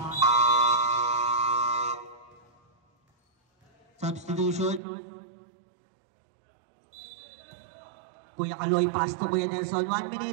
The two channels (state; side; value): drops out; left; at 4.8 s